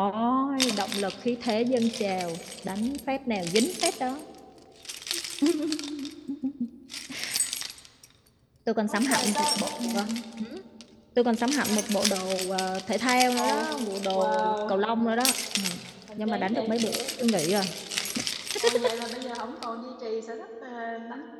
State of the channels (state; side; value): identical; both; correlation 1.00